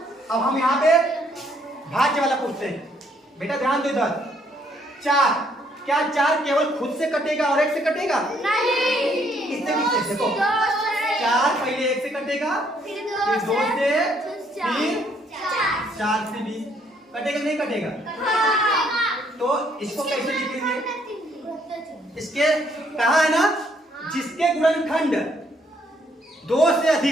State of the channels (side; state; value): both; normal; correlation 0.68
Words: अब हम यहाँ पे भाज्य वाला पूछते हैं। बेटा ध्यान दो इधर, 4, क्या 4 केवल खुद से कटेगा और 1 से कटेगा? नहीं। किससे किससे? देखो 4 पहले 1 से कटेगा, फिर 2 से, फिर 4 से भी कटेगा। नहीं कटेगा? तो इसको कैसे लिखेंगे? इसके कहा है ना, जिसके गुणनखंड 2 से